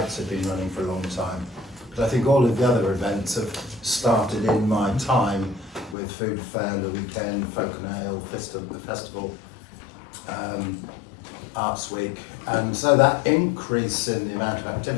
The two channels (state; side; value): drops out; right; at 6.0 s